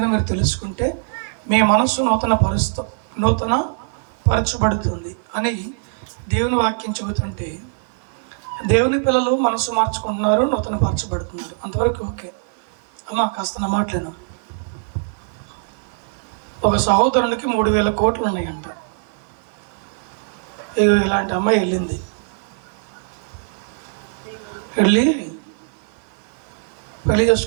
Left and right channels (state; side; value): silent; left; 55 dB below the other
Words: మీరు తెలుసుకుంటే మీ మనస్సు నూతన పరచబడుతుంది అని దేవుని వాక్యం చెబుతుంటే, దేవుని పిల్లలు మనసు మార్చుకుంటున్నారు, నూతన పరచబడుతున్నారు. అంతవరకు ఓకే. అమ్మా కాస్త నా మాటలేను. ఒక సహోదరునికి 3,000 కోట్లు ఉన్నాయంట. ఇలాంటి అమ్మాయి వెళ్ళి పెళ్లి